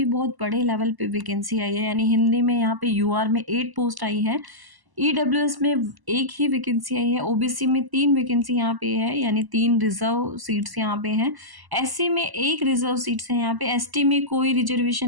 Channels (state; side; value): late; left; 1.0 ms